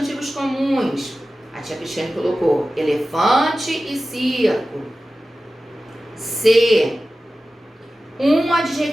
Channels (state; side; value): normal; both; correlation 0.95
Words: comuns. A tia Cristiane colocou elefante e circo. C. 1